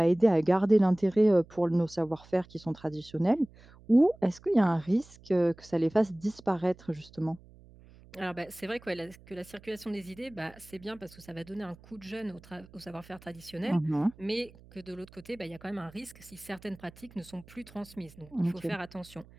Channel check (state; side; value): noise; right; hum, 23 dB below the sound